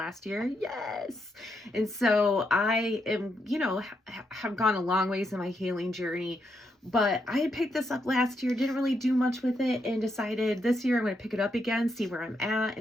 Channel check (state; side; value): normal; both; correlation 0.80